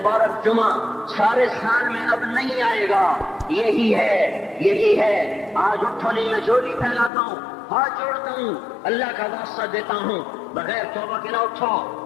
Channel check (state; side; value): drops out; right; at 7.1 s